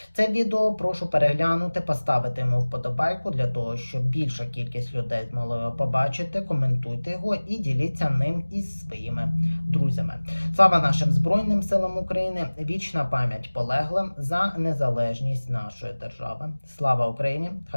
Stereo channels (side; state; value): both; inverted; correlation -1.00